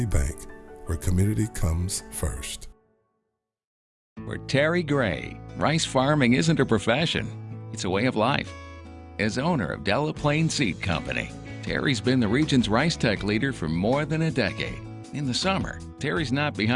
Bank, where community comes first. For Terry Gray, rice farming isn't a profession, it's a way of life. As owner of Delaplaine Seed Company, Terry's been the region's rice tech leader for more than a decade. In the summer, Terry's not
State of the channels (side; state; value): both; identical; correlation 1.00